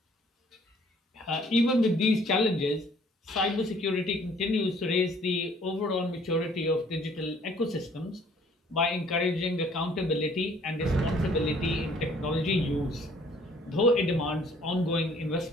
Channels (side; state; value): both; normal; correlation 0.58